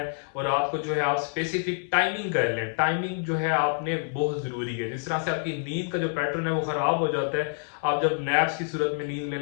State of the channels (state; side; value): silent; right; digital silence